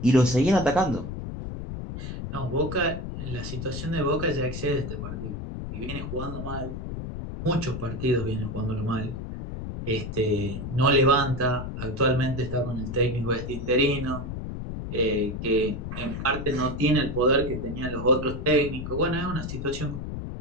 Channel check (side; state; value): left; noise; rumble, 6 dB below the sound